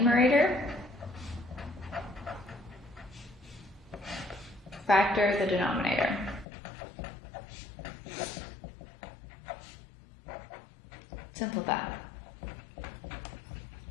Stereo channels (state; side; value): drops out; right; at 6.5 s